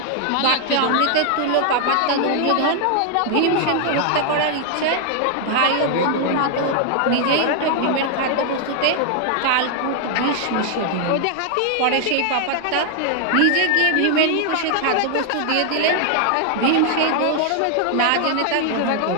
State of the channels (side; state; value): both; different; correlation 0.00